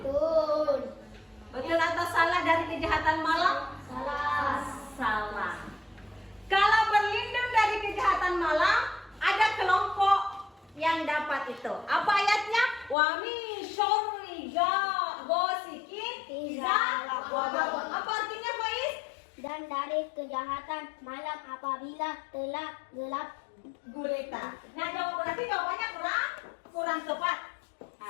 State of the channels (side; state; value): right; drops out; at 13.0 s